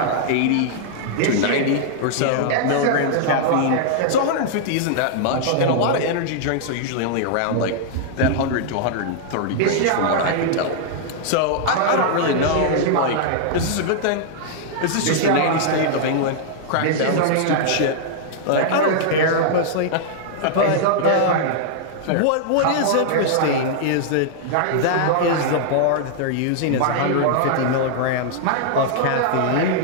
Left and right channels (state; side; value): different; both; correlation -0.01